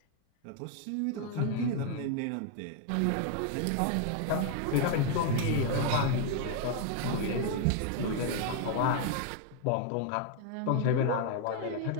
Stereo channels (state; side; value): different; both; correlation 0.00